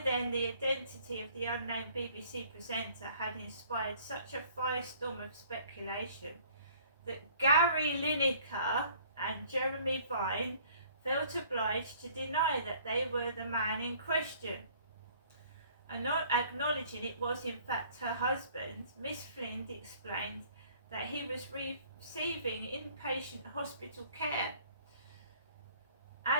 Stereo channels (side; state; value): both; inverted; correlation -0.56